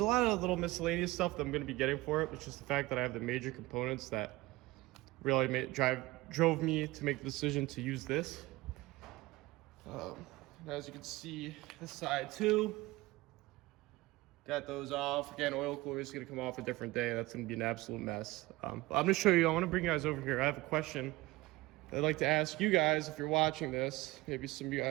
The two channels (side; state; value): left; quieter; 20.0 dB